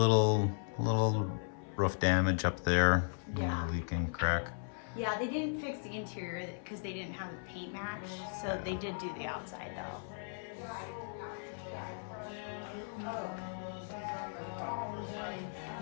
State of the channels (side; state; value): right; silent; 53 dB below the other